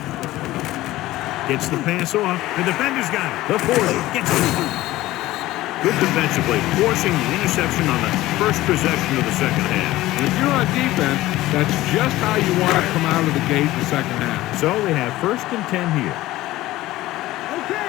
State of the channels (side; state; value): right; quieter; 16.7 dB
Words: Gets the pass off. The defender's got it. The 40 gets it. Good defensively, forcing the interception on the first possession of the second half. And if you're on defense, that's just how you want to come out of the gate in the second half. So they have 1st and 10 here.